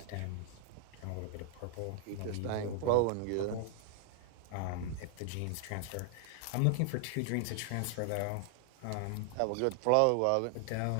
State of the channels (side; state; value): both; different; correlation 0.00